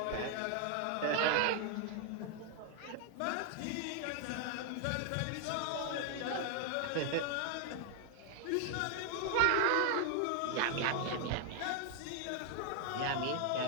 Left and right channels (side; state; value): both; different; correlation 0.00